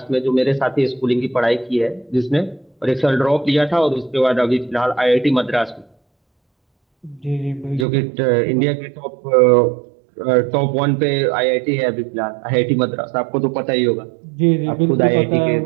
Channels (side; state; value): left; drops out; at 7.9 s